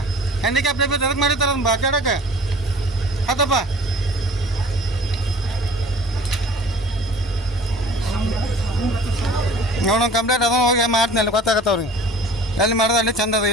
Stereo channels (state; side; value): normal; both; correlation 0.46